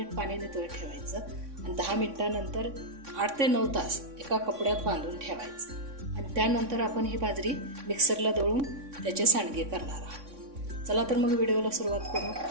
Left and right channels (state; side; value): late; left; 3.6 ms